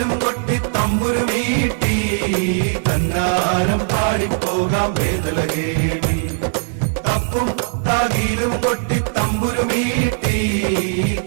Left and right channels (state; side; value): silent; left; 63 dB below the other